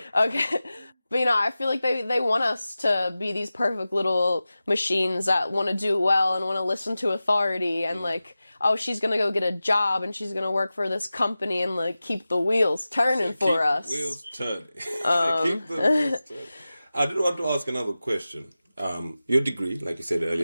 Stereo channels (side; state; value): both; inverted; correlation -0.95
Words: But I feel like they want us to be these perfect little machines that want to do well and want to listen to authority and like, oh, she's gonna go get a job and she's gonna work for this company and like keep the wheels turning for us. The wheels turning. Keep the wheels turning. I did want to ask another question. Your degree, like you said